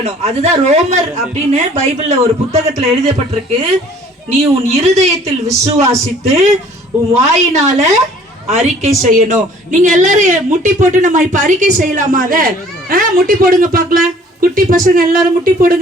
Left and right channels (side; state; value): both; normal; correlation 0.54